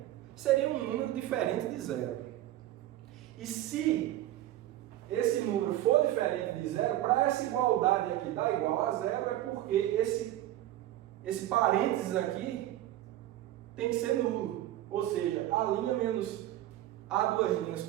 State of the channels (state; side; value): quieter; left; 14.1 dB